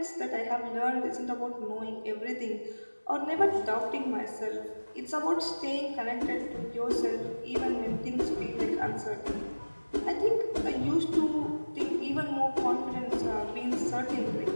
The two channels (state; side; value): inverted; both; correlation -1.00